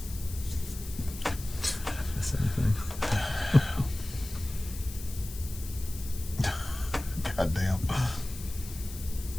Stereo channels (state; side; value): noise; left; hiss, 14 dB below the sound